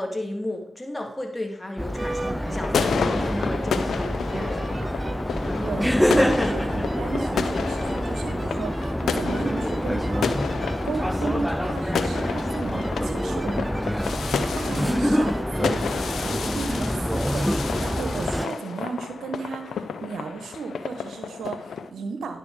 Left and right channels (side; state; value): both; normal; correlation 0.92